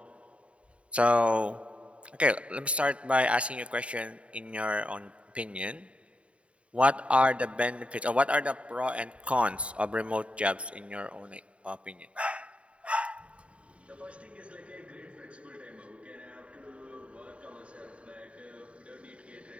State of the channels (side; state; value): left; late; 0.062 ms